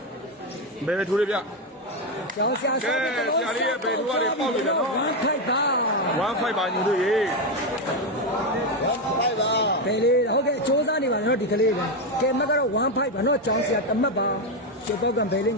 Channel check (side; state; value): both; normal; correlation 0.08